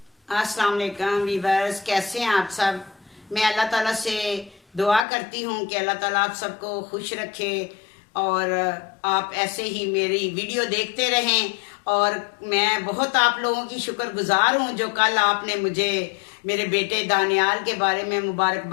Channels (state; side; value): drops out; right; at 5.1 s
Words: अस्सलाम वालेकुम वीवर्स, कैसे हैं आप सब। मैं अल्लाह ताला से दुआ करती हूँ कि अल्लाह ताला आप सबको खुश रखे और आप ऐसे ही मेरी वीडियो देखते रहें। और मैं बहुत आप लोगों की शुक्रगुजार हूँ जो कल आपने मुझे मेरे बेटे दानियाल के बारे में